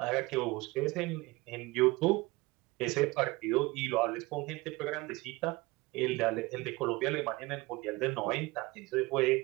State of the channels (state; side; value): quieter; left; 22.4 dB